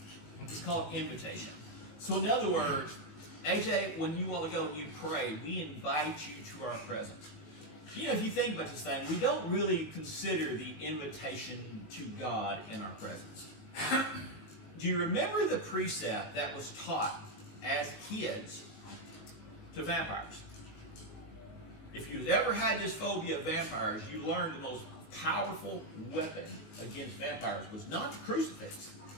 It's called invitation. So in other words, AJ, when you want to go and you pray, we invite you to our presence. If you think about this thing, we don't really consider the invitation to God in our presence. Do you remember the precept that was taught as kids to vampires? If you've ever had this phobia of vampires, you learned the most powerful weapon against vampires was not the crucifix.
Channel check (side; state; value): right; late; 19 ms